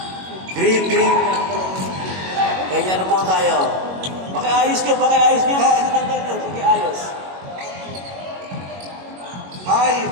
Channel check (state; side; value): late; left; 21 ms